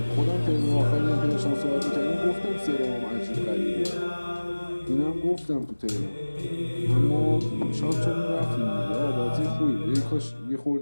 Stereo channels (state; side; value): inverted; both; correlation -1.00